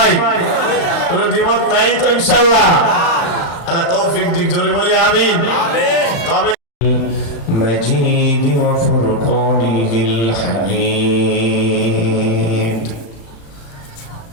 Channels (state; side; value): late; right; 35 ms